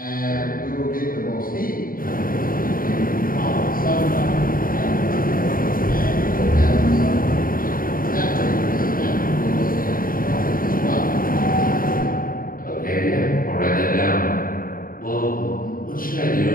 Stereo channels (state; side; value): late; right; 0.41 ms